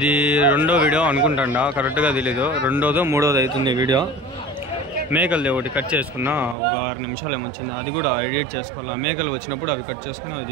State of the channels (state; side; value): drops out; left; at 6.6 s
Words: 2వ వీడియో అనుకుంటా, కరెక్ట్గా తెలీదు. 2వ 3వది అవుతుంది వీడియో. మేకలది ఒకటి కట్ చేసుకున్నా, ఒక 6 నిమిషాలు ఏమొచ్చింది. అది కూడా ఎడిట్ చేసుకోవాలా. మేకలు వచ్చినప్పుడు అవి కట్ చేసుకుని అవి